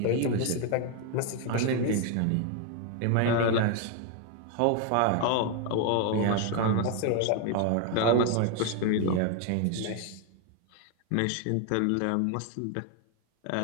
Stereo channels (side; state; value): both; different; correlation 0.01